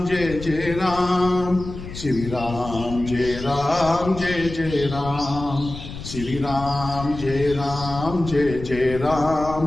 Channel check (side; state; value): left; noise; rumble, 10 dB below the sound